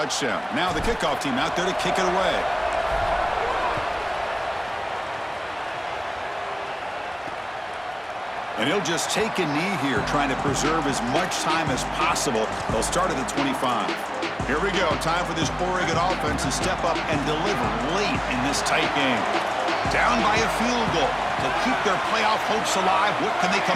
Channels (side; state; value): both; identical; correlation 1.00